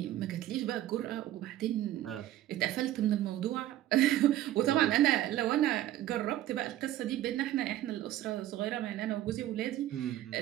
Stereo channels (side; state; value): left; quieter; 13.6 dB